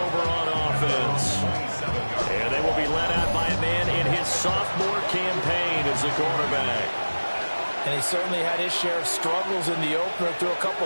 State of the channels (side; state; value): both; inverted; correlation -1.00